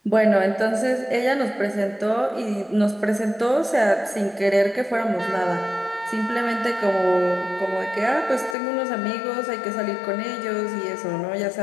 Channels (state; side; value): drops out; right; at 8.6 s